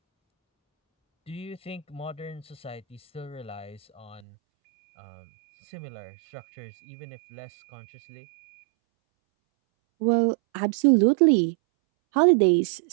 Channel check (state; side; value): drops out; left; at 4.2 s